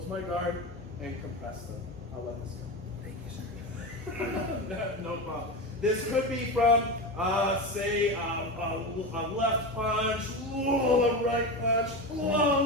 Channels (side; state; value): both; normal; correlation 0.21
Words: my guard and compress them. I'll let this go. Thank you, sir. No problem. This could be from, say, a left punch, a right punch,